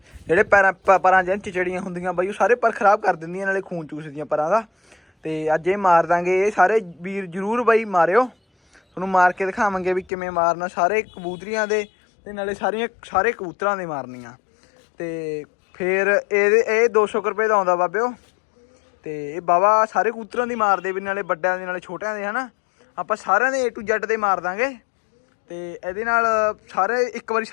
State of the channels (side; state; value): right; drops out; at 10.1 s